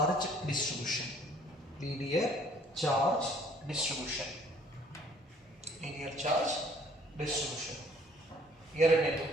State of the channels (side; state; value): both; normal; correlation 0.58